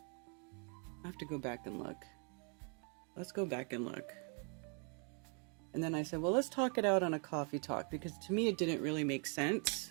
I have to go back and look. Let's go back and look. And then I said, well, let's talk it out on a coffee talk, because to me it didn't really make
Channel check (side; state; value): left; quieter; 37.9 dB